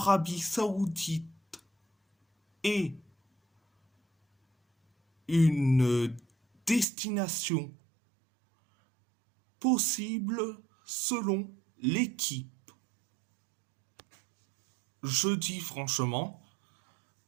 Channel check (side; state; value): left; drops out; at 6.9 s